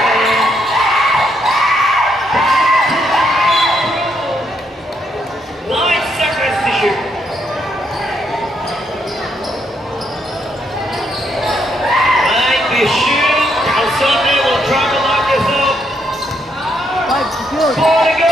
9 seconds to shoot. Sunday will try to lock this up. 4 to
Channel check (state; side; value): normal; both; correlation 0.75